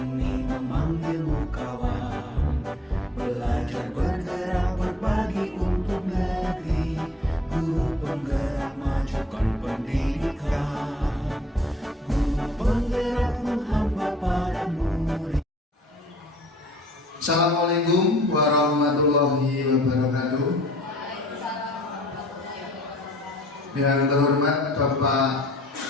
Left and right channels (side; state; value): both; normal; correlation 0.56